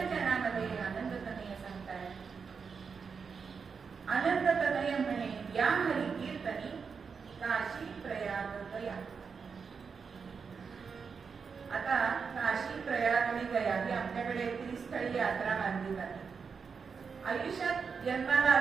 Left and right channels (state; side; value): quieter; left; 5.7 dB